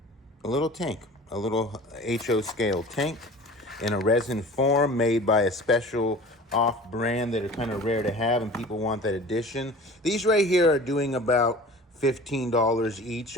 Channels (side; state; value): both; normal; correlation 0.41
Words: little tank, a little HO scale tank in a resin form made by a special off brand that are kind of rare to have and people want that edition. These right here are doing about $15 each